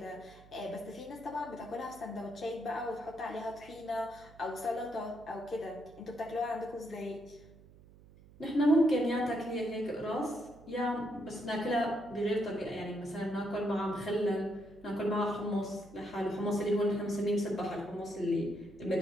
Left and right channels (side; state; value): right; noise; hum, 22 dB below the sound